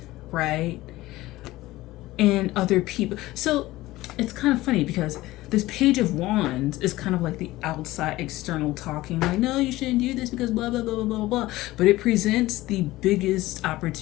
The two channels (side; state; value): right; quieter; 17.8 dB